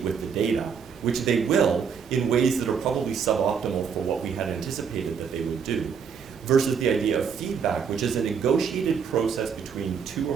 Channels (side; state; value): left; quieter; 6.6 dB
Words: with the data, which they will in ways that are probably suboptimal for what we had anticipated that they would do, versus the idea of feedback, which is a negotiated process between two